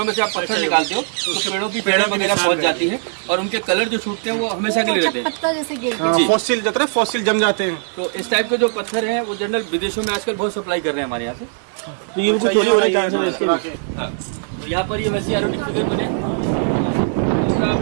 में से आप पत्थर निकालते हो तो पेड़ों की पेड़ वगैरह पहुंच जाती है और उनके कलर जो छूटते हैं वो हमेशा के लिए रहते हैं। फॉसिल जाते हैं, फॉसिल जम जाते हैं। तो इस टाइप के जो पत्थर हैं वो जनरल विदेशों में आजकल बहुत सप्लाई कर रहे हैं हमारे यहाँ से। तो ये कुछ चोरी होने चांस है इसके भी। हाँ, तो यहाँ पर ये वैसे एरोटिक फिगर बने। दूसरा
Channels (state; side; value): silent; left; digital silence